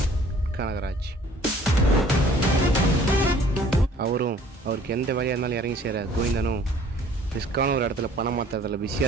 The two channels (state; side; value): normal; both; correlation 0.54